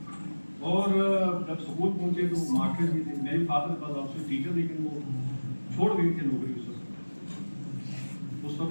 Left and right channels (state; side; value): inverted; both; correlation -1.00